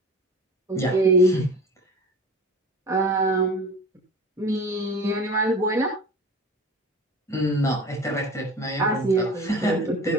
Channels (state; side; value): normal; both; correlation 0.37